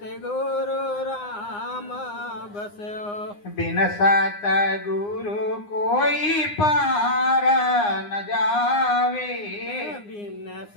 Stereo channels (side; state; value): right; late; 9.7 ms